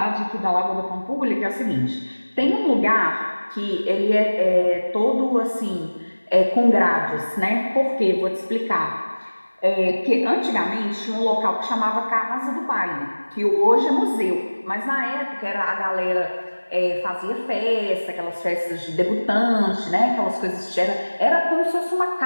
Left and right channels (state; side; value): inverted; both; correlation -1.00